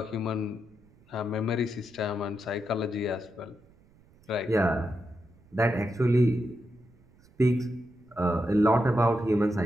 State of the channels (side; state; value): right; noise; rumble, 29 dB below the sound